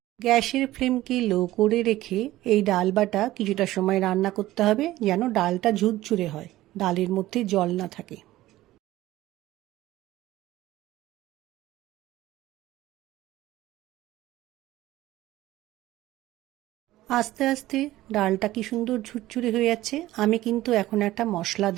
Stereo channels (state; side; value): quieter; left; 16.0 dB